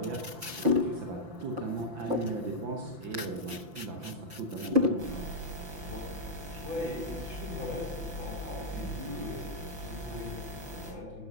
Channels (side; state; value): left; late; 5.9 ms